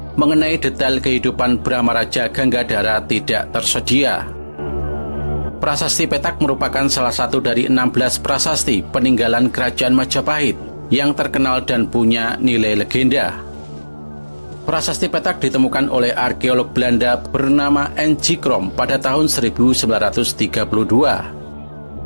mengenai detail kehidupan Brahmaraja Ganggadara tidak tersedia. Prasasti Petak merupakan salah satu dari 16 prasasti peninggalan Kerajaan Majapahit yang terkenal dan punya nilai legenda. Prasasti Petak ditemukan oleh arkeolog Belanda bernama N.G. Krom pada tahun 1932.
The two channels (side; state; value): both; inverted; correlation -1.00